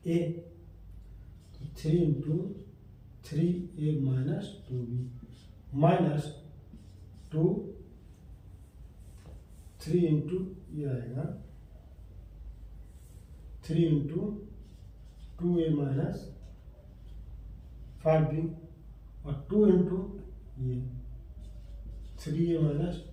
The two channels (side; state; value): both; identical; correlation 1.00